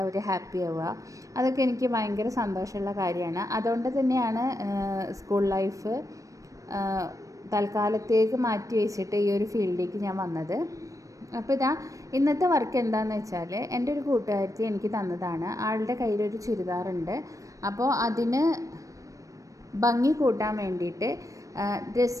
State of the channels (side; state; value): left; late; 0.16 ms